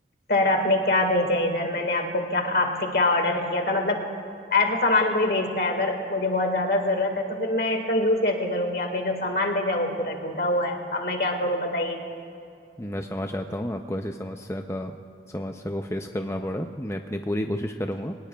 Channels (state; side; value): normal; both; correlation 0.00